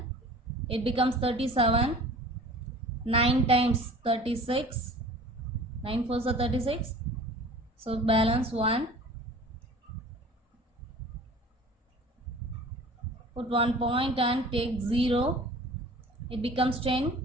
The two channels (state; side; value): normal; both; correlation 0.44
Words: It becomes 37. 9 times 36. 9 4s are 36. So balance 1. Put 1 point and take 0. It becomes